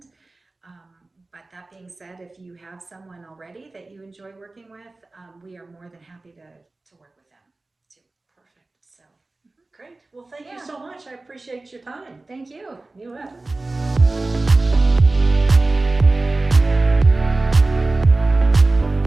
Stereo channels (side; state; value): left; quieter; 3.2 dB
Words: But that being said, if you have someone already that you enjoy working with, we are more than happy to work with them too. Perfect. So Great. Well, thank you Yeah. so much. I appreciate your time. Thank you. You bet.